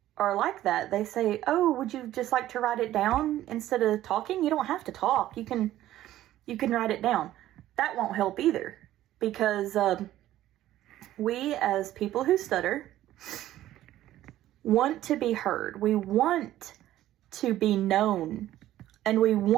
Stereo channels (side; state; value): left; quieter; 13.7 dB